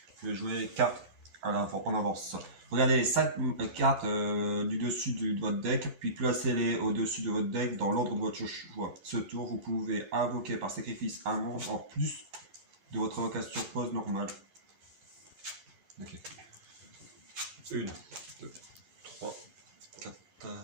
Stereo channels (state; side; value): late; left; 11 ms